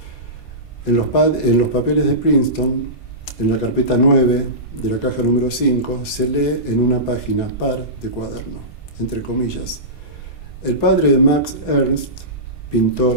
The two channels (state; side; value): late; right; 27 ms